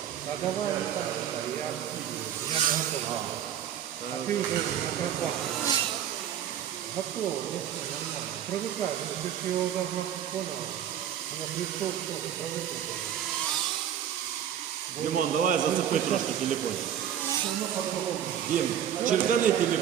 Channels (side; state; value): left; quieter; 10.0 dB